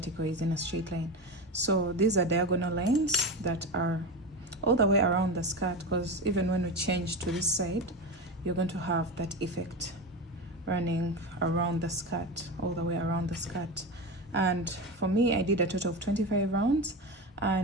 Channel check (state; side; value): normal; both; correlation 0.22